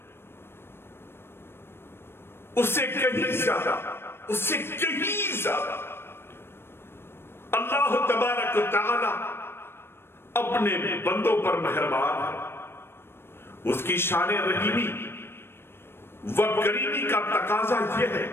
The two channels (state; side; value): late; right; 0.12 ms